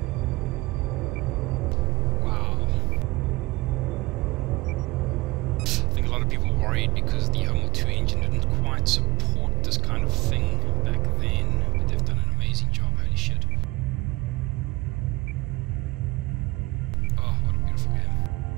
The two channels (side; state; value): left; quieter; 20.8 dB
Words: Wow. I think a lot of people were worried because the Homeworld 2 engine didn't quite support this kind of thing back then. But they've done an amazing job. Holy shit. Oh, what a beautiful game.